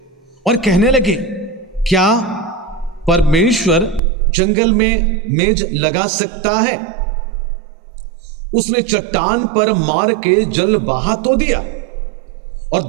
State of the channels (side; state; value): left; drops out; at 4.0 s